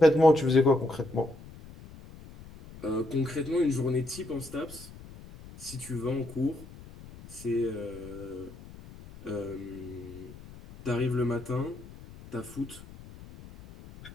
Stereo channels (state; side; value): noise; left; rumble, 17 dB below the sound